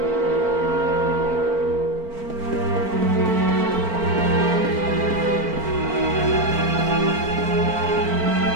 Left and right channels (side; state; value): left; late; 4.4 ms